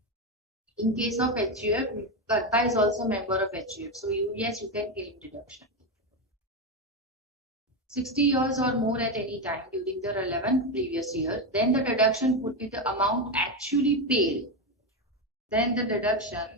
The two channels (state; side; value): normal; both; correlation 0.12